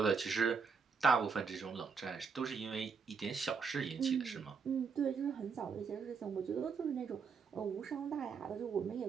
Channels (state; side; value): quieter; left; 5.5 dB